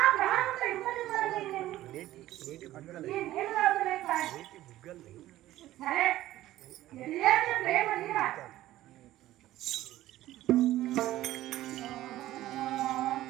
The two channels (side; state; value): left; quieter; 14.9 dB